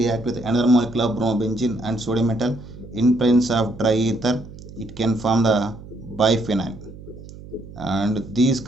with another molecule of bromobenzene and sodium metal in presence of dry ether. It can form the biphenyl, and these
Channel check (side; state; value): right; noise; hum, 16 dB below the sound